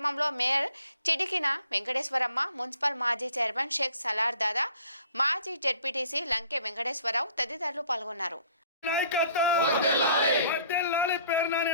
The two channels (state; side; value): inverted; both; correlation -0.56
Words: మేయర్ చిడికిన వెంకటేశ్వరమ్మ, మున్సిపల్ మాజీ చైర్మన్ షేక్ సలార్ దాదా, మాజీ జెడ్పీటీసీ లంకె వెంకటేశ్వరరావు తదితరులు పాల్గొన్నారు.